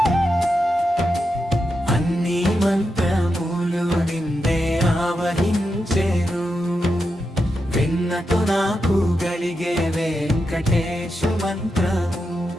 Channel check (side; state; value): both; normal; correlation 0.87